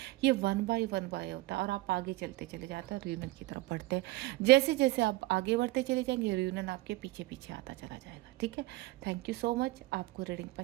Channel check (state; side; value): quieter; left; 20.2 dB